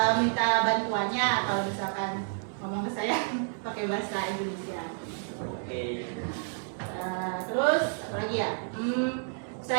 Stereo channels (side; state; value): left; silent; 58 dB below the other